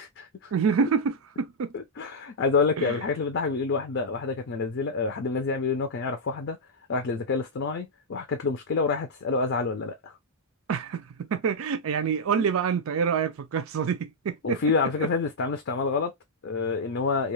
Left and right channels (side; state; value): both; normal; correlation -0.06